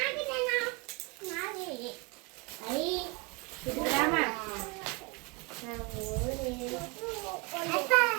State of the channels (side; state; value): left; quieter; 29.6 dB